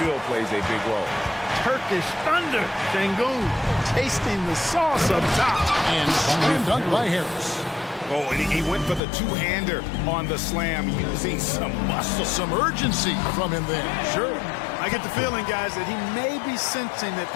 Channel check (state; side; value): drops out; right; at 9.0 s